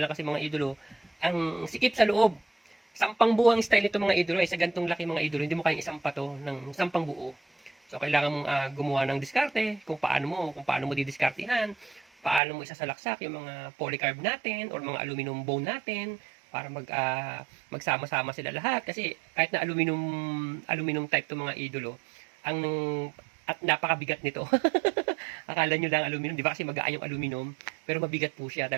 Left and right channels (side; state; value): left; drops out; at 12.4 s